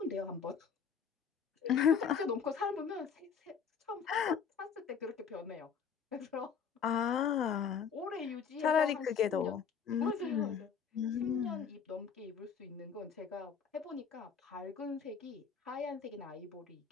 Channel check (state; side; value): quieter; right; 6.8 dB